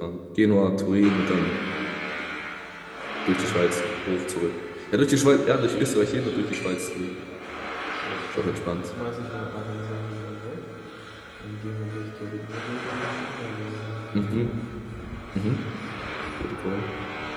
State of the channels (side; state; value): both; identical; correlation 1.00